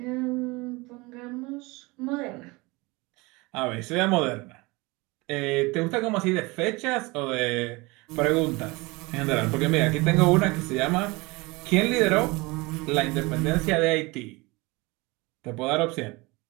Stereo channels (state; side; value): quieter; left; 24.4 dB